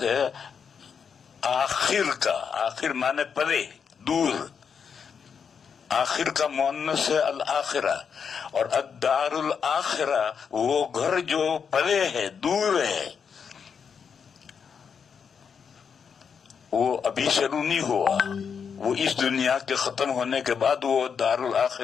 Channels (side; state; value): right; quieter; 6.6 dB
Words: ہے آخر کا. آخر مانے پرے، دور. آخر کا مؤنث ہے الآخرہ. اور الدار الآخرہ وہ گھر جو پرے ہے، دور ہے، وہ ابھی شروع نہیں ہوا. وہ اس دنیا کے ختم ہونے کے بعد وہ دار